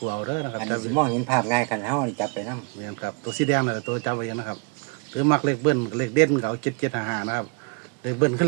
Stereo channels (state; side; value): quieter; left; 32.7 dB